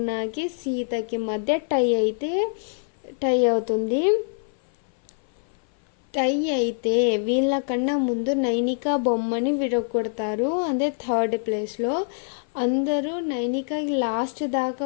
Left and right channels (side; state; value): right; silent; 56 dB below the other